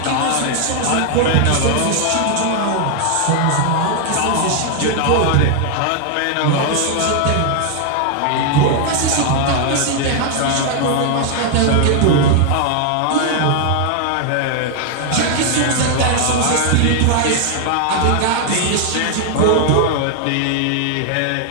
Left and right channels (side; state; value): both; different; correlation 0.00